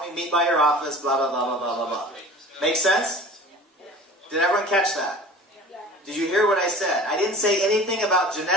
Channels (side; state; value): both; normal; correlation 0.42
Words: we meet by your office, blah, blah, blah, blah, blah, blah, blah. Make sense? Did everyone catch that? Did you hear what I said? I didn't say anything about